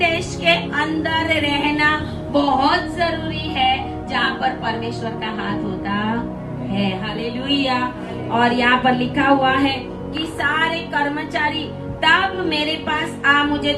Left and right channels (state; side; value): identical; both; correlation 1.00